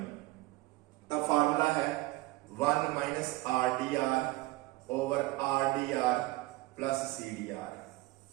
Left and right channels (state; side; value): quieter; left; 20.4 dB